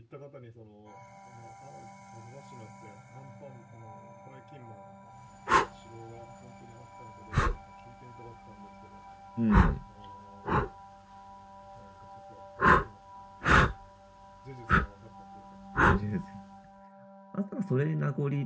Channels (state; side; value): identical; both; correlation 1.00